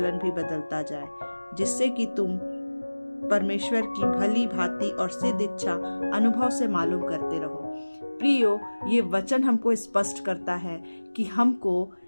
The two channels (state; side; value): inverted; both; correlation -1.00